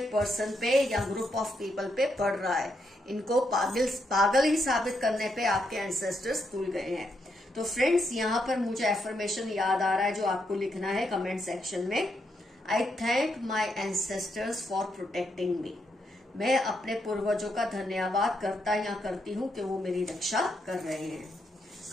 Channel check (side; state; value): both; normal; correlation 0.79